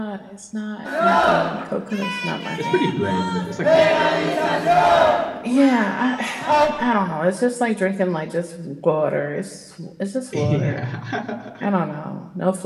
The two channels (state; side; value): identical; both; correlation 1.00